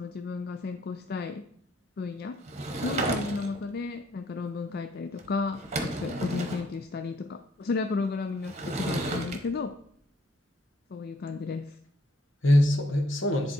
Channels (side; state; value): both; normal; correlation 0.67